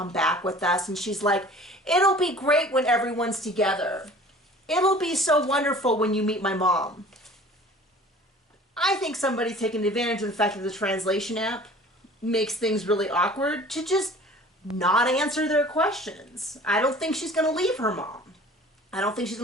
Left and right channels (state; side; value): normal; both; correlation 0.46